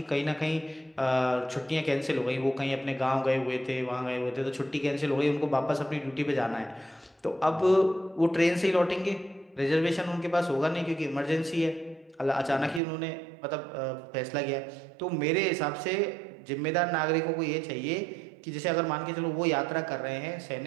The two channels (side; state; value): left; drops out; at 12.8 s